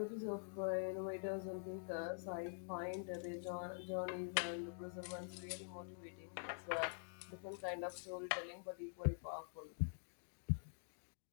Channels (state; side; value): silent; right; digital silence